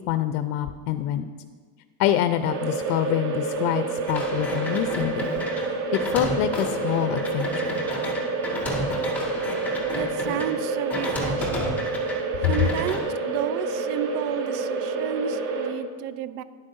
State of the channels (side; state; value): both; normal; correlation 0.06